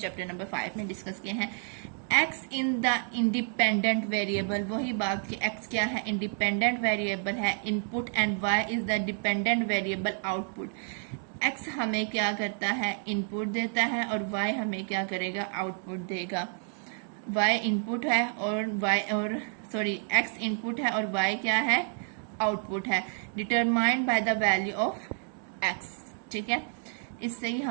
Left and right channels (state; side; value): silent; left; 55 dB below the other